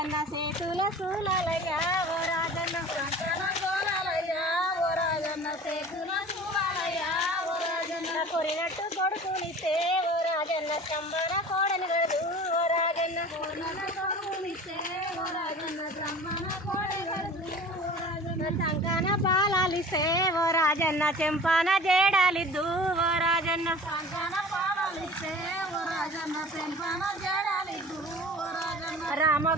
సేతుల సూలయ్యా ఓ రాజన్న సంకాన జోలయ్యా ఓ రాజన్న సేతుల సూలయ్యా ఓ రాజన్న కొరినట్టు కొడుకునిస్తే ఓ రాజన్న చంబన కోడని గడు ఓ రాజన్న కొడుకునిస్తే ఓ రాజన్న చంబన కోడని గడు ఓ రాజన్న సంకాన పాలాలిస్తే ఓ రాజన్న చెంపాన జేడాలిద్దు ఓ రాజన్న సంకాన పాలాలిస్తే ఓ రాజన్న చెంపాన జేడాలిద్దు ఓ రాజన్న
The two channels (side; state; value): both; normal; correlation 0.41